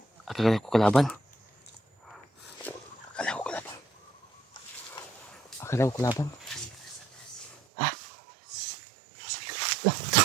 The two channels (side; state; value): left; drops out; at 7.6 s